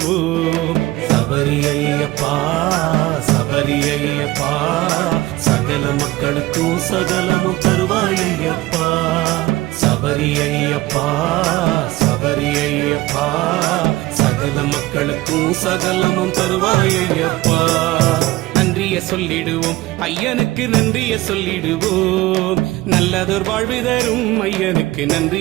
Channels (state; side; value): quieter; left; 18.4 dB